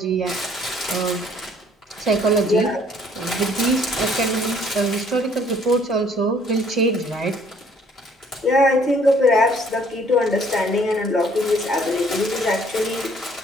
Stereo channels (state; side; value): normal; both; correlation 0.60